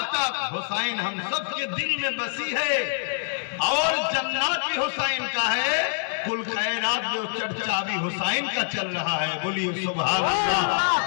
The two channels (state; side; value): silent; right; digital silence